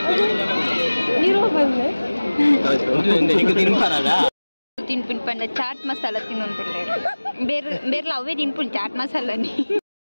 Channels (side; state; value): both; inverted; correlation -1.00